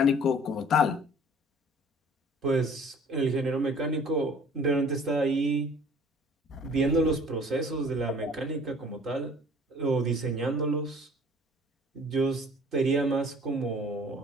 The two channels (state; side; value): normal; both; correlation 0.51